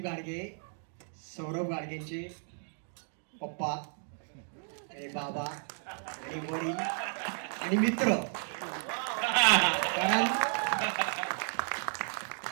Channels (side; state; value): left; silent; 55 dB below the other